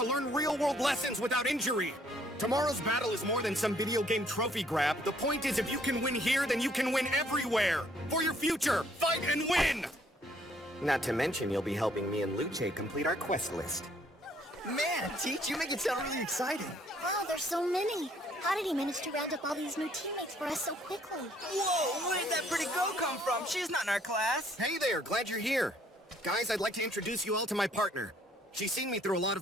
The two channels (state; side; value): normal; both; correlation 0.64